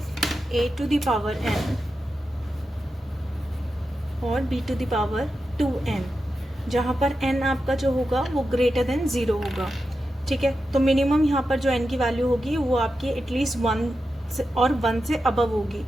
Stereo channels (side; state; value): both; normal; correlation 0.90